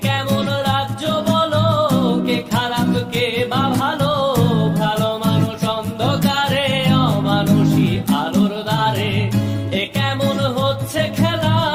কেমন রাজ্য বলো, কে খারাপ কে বা ভালো, ভালো মানুষ অন্ধকারে, অমানুষী আলোর দ্বারে। এ কেমন হচ্ছে খেলা,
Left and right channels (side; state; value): both; identical; correlation 1.00